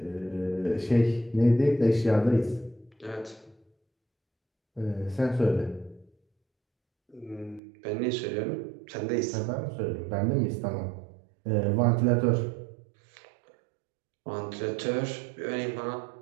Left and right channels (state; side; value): drops out; left; at 7.6 s